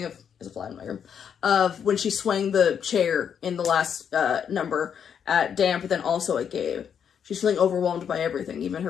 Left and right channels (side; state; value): right; quieter; 7.9 dB